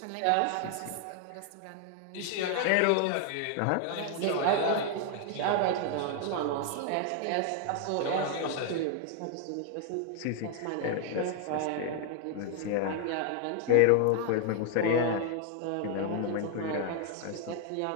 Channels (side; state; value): both; different; correlation 0.00